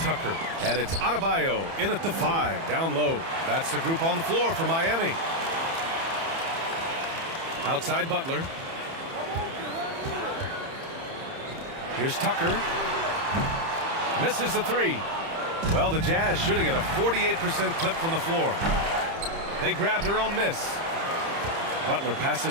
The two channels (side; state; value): left; late; 30 ms